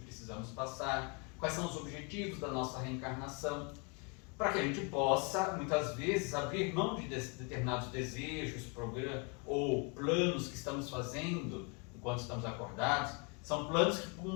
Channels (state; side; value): quieter; right; 33.6 dB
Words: passar, quais são os objetivos da nossa reencarnação, para que a gente possa, muitas vezes, abrir mão de determinados desejos, ou planos que estamos fazendo enquanto estamos acordados. São planos que